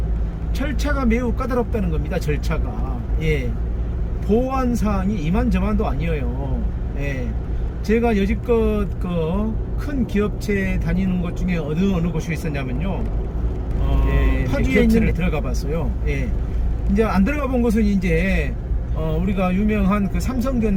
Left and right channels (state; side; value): identical; both; correlation 1.00